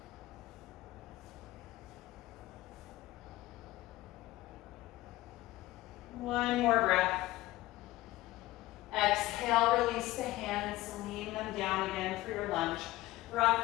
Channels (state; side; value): quieter; right; 17.5 dB